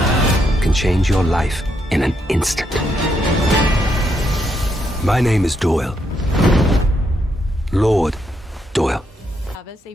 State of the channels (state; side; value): normal; both; correlation 0.78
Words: can change your life in an instant. My name is Doyle. Lord Doyle. Chavez,